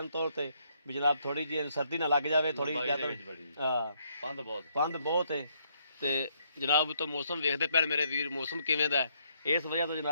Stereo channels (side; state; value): both; inverted; correlation -0.72